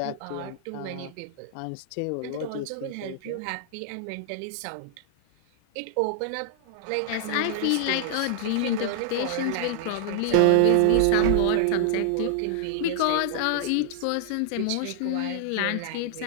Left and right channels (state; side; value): different; both; correlation -0.01